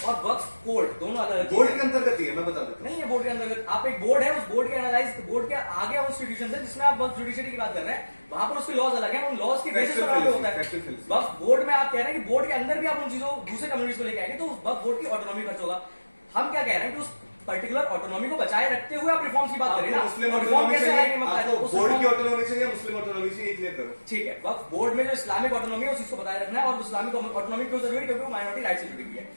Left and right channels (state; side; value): inverted; both; correlation -1.00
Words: और वक्फ कोर्ट दोनों अलग बोर्ड के अंतर्गत ही है, मैं बता देता हूँ। नहीं है बोर्ड के अंतर्गत। आप एक बोर्ड है, उस बोर्ड के एनालाइज बोर्ड के आगे वो इंस्टीट्यूशन है जिसमें आप वक्फ जुडिशरी की बात कर रहे हैं, वहां पर उसके लॉज अलग है, उन लॉज की बेसिस पर होता है। वक्फ बोर्ड में आप कह रहे हैं कि बोर्ड के अंदर भी आप उन चीजों दूसरे कम्युनिटीज को लेके आएंगे, तो वक्फ बोर्ड की ऑटोनॉमी खर्च होगा। हम क्या कह रहे हैं कि उस पर्टिकुलर ऑटोनॉमी को बचाए रखते हुए आप रिफॉर्म्स की बात करें ना। मुस्लिम रिफॉर्म कैसे आएंगे? बोर्ड की ऑटोनॉमी चाहिए, मुस्लिम ऑटोनॉमी चाहिए, क्लियर करो। ठीक है, वक्फ बोर्ड में जो इस्लामिक ऑटोनॉमी है उस चीज को बताए रखना है, और इस्लामिक ऑटोनॉमी क्यों जरूरी है? क्योंकि वो माइनॉरिटी राइट से जुड़ी हुई है।